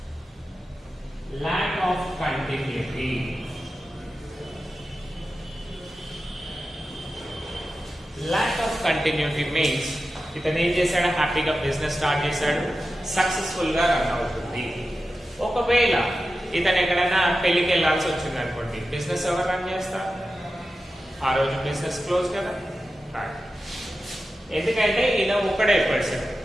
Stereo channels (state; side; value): normal; both; correlation 0.92